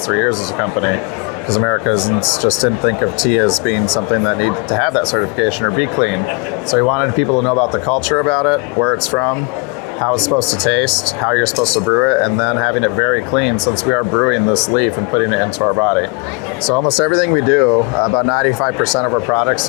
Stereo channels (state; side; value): quieter; right; 31.0 dB